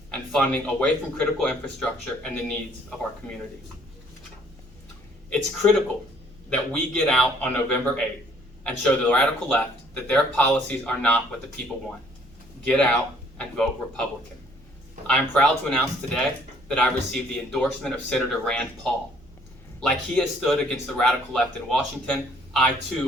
and funding away from critical infrastructure and the needs of our communities. It's critical that we get out on November 8th and show the radical left that their policies are not what the people want. Get out and vote Republican. I am proud to announce today that I received the endorsement of Senator Rand Paul. Like he has stood against the radical left in Washington, I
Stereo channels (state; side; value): noise; right; hum, 27 dB below the sound